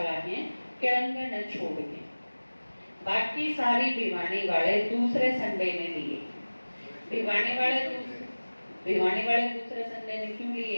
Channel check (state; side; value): inverted; both; correlation -1.00